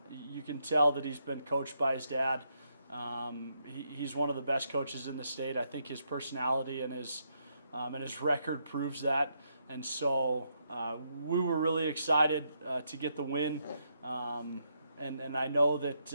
You can tell that he's been coached by his dad. He's one of the best coaches in the state. I think his personality and his record proves that. And so we were really excited to get the win. And I know that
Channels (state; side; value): inverted; both; correlation -0.78